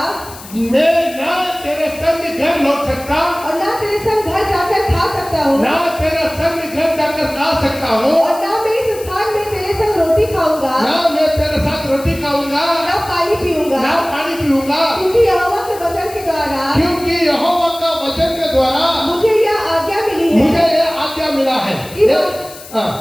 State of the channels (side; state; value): left; noise; hiss, 17 dB below the sound